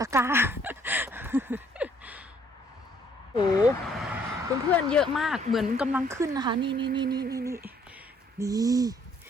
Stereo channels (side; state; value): both; normal; correlation 0.64